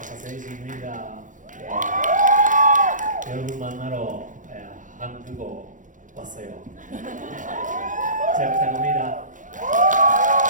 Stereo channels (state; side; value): late; left; 0.37 ms